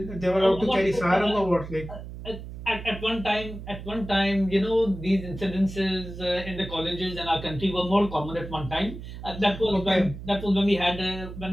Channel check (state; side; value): noise; right; hum, 11 dB below the sound